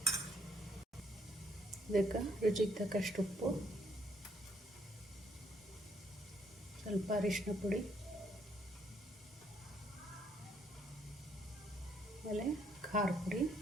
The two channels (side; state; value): both; normal; correlation 0.68